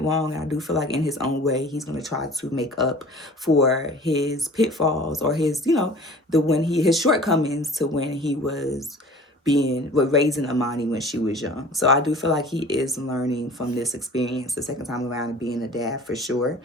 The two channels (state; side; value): normal; both; correlation 0.44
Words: wrong. And I do feel like in his own way, he's going to try to make up for his pitfalls or his, his shortcomings to when he was raising Imani when she was young. So I do feel like he is learning from this experience the second time around and being a dad for sure.